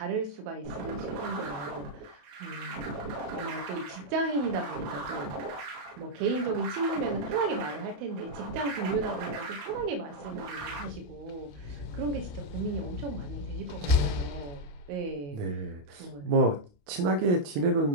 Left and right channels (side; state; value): left; late; 28 ms